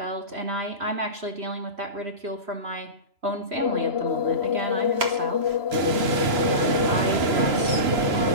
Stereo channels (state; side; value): late; left; 3.0 ms